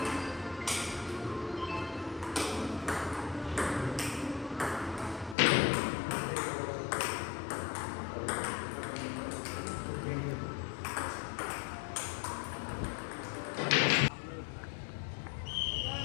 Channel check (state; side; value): drops out; right; at 5.4 s